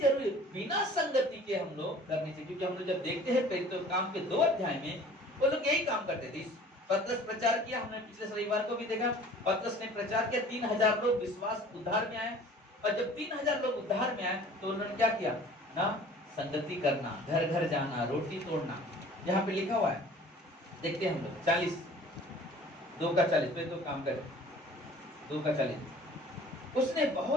बिना संगति के हम लोग करने चाहिए, क्योंकि हम लोग जब देखते हैं प्रेरितों के काम के 2 अध्याय में, वो लोग यही काम करते थे। पतरस प्रचार किया, हमने पिछले रविवार को भी देखा, पतरस ने प्रचार किया, 3000 लोग विश्वास उद्धार में आए। और जब 3000 लोग उद्धार में आए, तो उन्होंने क्या किया ना? संगति करना, घर घर जाना, रोटी तोड़ना। यहाँ पे लिखा हुआ है, देखते हैं हम लोग 40, 2 का 40 पे तो काम करे, 2 का 40। उसने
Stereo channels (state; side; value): normal; both; correlation 0.48